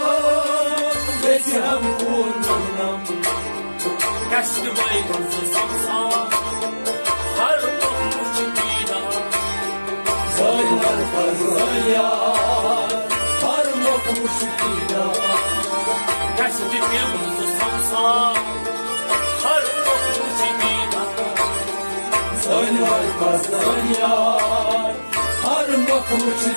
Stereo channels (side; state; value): both; inverted; correlation -1.00